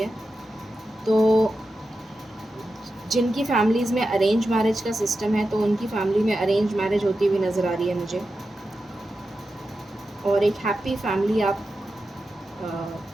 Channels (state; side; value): normal; both; correlation 0.91